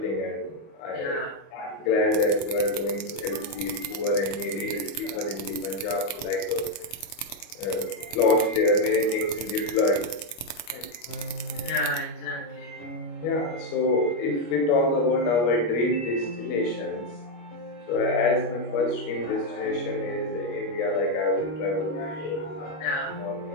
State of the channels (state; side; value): late; right; 25 ms